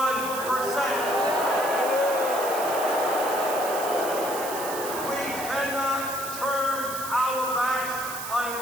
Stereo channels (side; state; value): right; noise; hiss, 9 dB below the sound